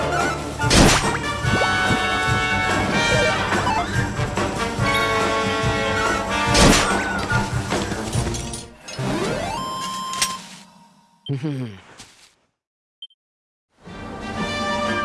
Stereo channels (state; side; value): identical; both; correlation 1.00